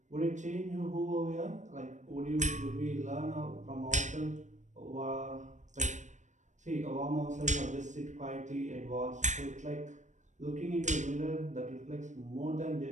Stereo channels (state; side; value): late; left; 0.35 ms